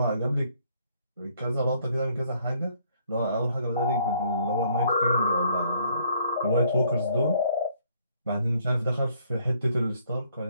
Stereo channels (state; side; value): inverted; both; correlation -0.65